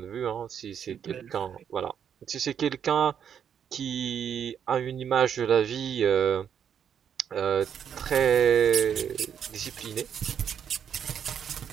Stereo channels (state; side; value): quieter; left; 8.3 dB